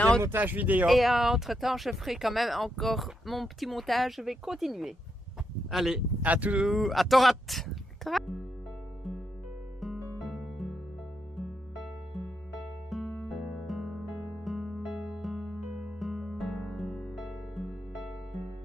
montages vidéo. Et entre-temps, je ferai quand même encore mon petit montage. Je vais continuer. Allez, à Torat.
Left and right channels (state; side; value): normal; both; correlation 0.82